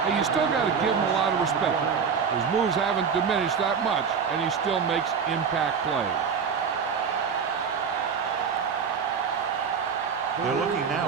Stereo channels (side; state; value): left; quieter; 6.4 dB